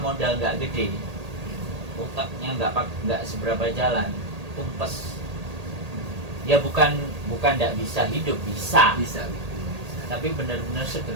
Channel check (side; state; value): left; late; 1.8 ms